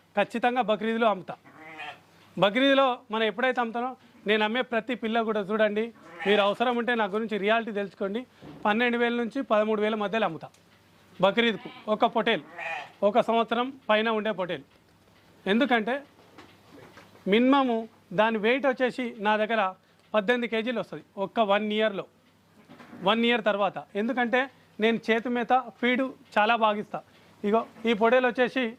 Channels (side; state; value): both; identical; correlation 1.00